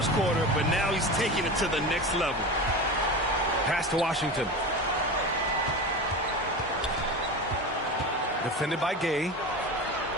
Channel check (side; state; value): both; normal; correlation 0.27